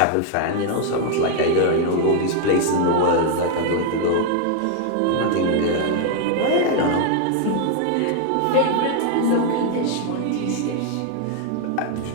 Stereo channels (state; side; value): different; both; correlation 0.00